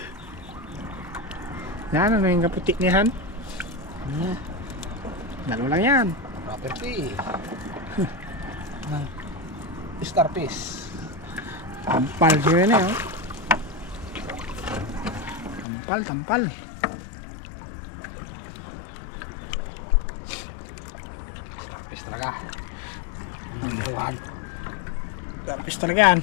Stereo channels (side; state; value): right; drops out; at 15.7 s